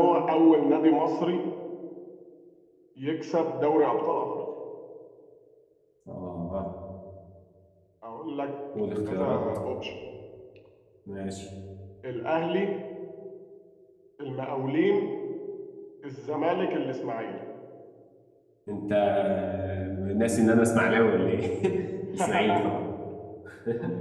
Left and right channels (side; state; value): both; identical; correlation 1.00